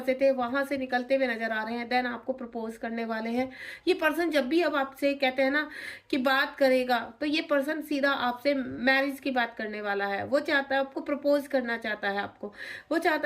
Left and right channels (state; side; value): identical; both; correlation 1.00